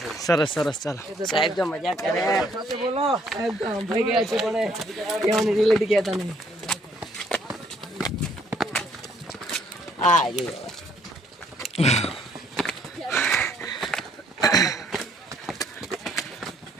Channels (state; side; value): normal; both; correlation 0.65